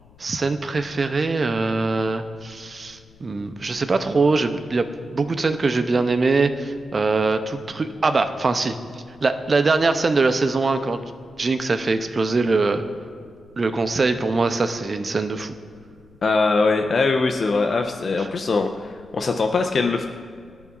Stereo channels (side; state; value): left; noise; rumble, 27 dB below the sound